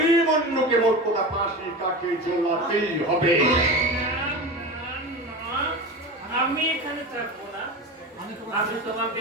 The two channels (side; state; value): both; normal; correlation 0.27